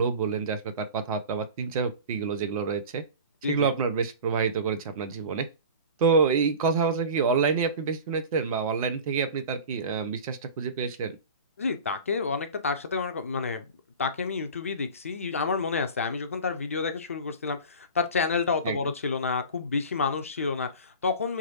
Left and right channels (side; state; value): both; inverted; correlation -0.35